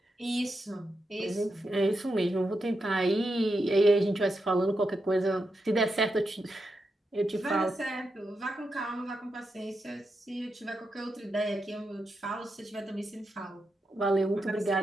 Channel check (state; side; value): normal; both; correlation 0.86